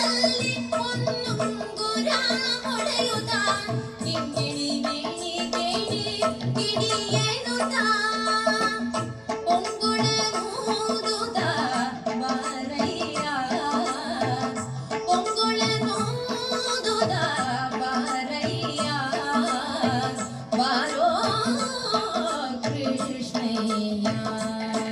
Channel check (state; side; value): identical; both; correlation 1.00